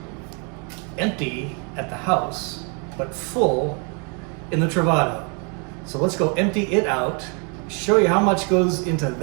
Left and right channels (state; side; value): quieter; left; 35.8 dB